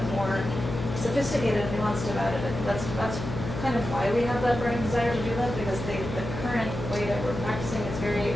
more sophisticated and nuanced about it. I think that's kind of why we have that burning desire to do that, because the current way that we're practicing is very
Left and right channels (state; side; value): noise; left; hum, 7 dB below the sound